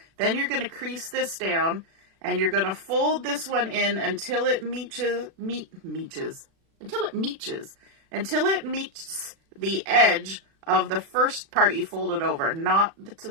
Then you're going to crease this down, and you're going to fold this one in until it meets the edge of the first part you folded over, not the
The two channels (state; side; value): late; left; 36 ms